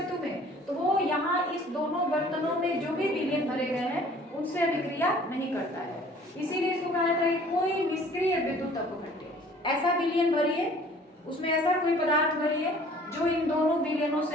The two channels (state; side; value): normal; both; correlation 0.52